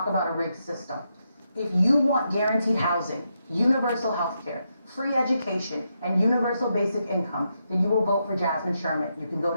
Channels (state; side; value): inverted; both; correlation -0.83